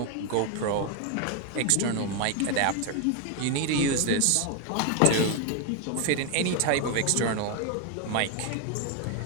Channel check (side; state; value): both; different; correlation 0.01